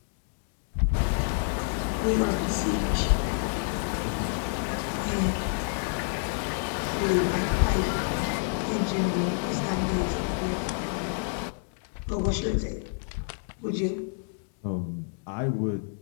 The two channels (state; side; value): silent; right; 59 dB below the other